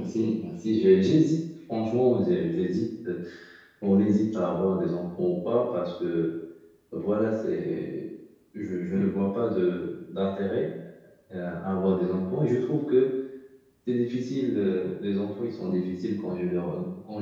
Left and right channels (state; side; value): identical; both; correlation 1.00